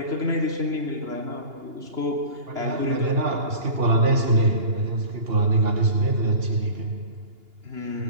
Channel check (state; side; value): late; left; 2.8 ms